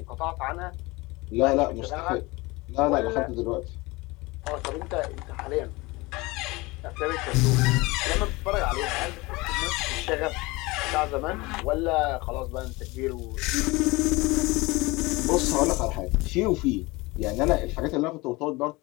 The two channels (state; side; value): quieter; right; 22.9 dB